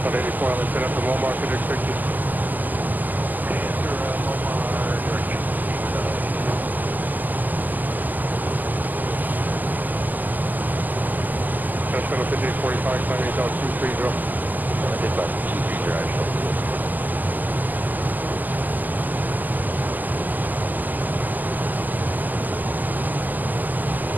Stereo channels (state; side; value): late; left; 0.084 ms